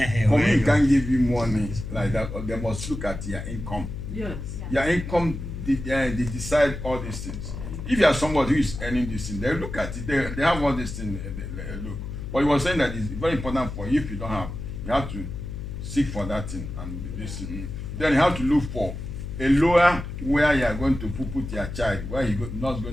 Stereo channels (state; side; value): noise; left; hum, 7 dB below the sound